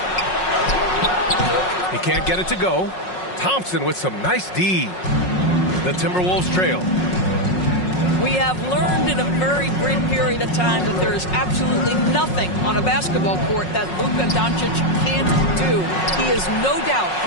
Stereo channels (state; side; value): late; right; 5.5 ms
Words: He can't get it to go. Thompson with some nice D. The Timberwolves trail. We have learned in a very brief period of time that there is absolutely nothing on a basketball court that Luka Doncic can't do. He is no doubt